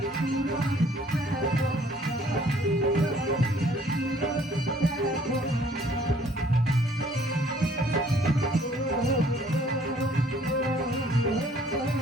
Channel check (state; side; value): normal; both; correlation 0.59